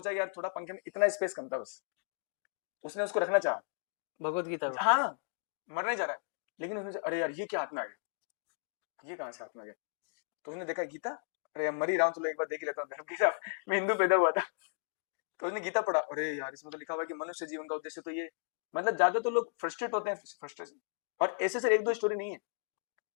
यार थोड़ा पंखे में इतना स्पेस कम था बस, उसने उसको रखना चाहा, भगवत गीता को। हाँ मरना ही चाह रहा है, लेकिन उसने अरे यार ये क्या हाथ में आ गया, ये कहाँ से हाथ में आ गया, तो उसने देखा गीता, अरे यार मर ही रहा हूँ, चलो एक बार देख ही लेता हूँ धर्म की साहब, मैं हिंदू पैदा हुआ था, तो उसने गीता पढ़ा, अरे यार इसमें तो लिखा हुआ है कि मनुष्य जीवन का उद्देश्य तो ये, मतलब ज्यादा तो लोग फ्रस्ट्रेट होते हैं, फ्रस्ट्रेशन, और ऐसे से एक दो स्टोरी नहीं है,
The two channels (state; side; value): silent; right; digital silence